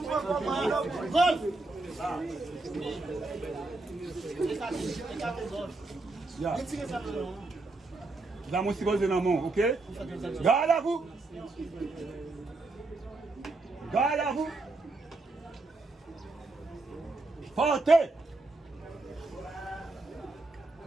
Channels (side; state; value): left; quieter; 3.2 dB